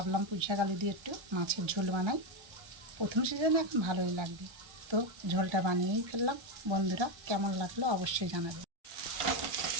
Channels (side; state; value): left; late; 1.3 ms